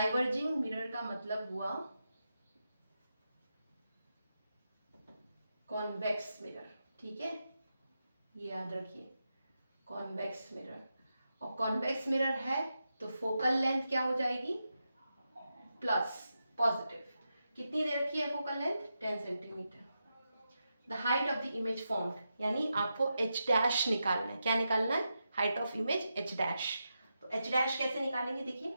मिरर का मतलब हुआ कॉन्वेक्स मिरर। ठीक है, ये याद रखिए, कॉन्वेक्स मिरर। और कॉन्वेक्स मिरर है तो फोकल लेंथ क्या हो जाएगी प्लस, पॉजिटिव। कितनी दे रखी है focal length 10 centimetre. The height of the image formed, यानी आपको h डैश निकालना है। क्या निकालना है? Height of image h dash. तो h डैश कैसे निकालेंगे? देखिए,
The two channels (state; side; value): inverted; both; correlation -0.88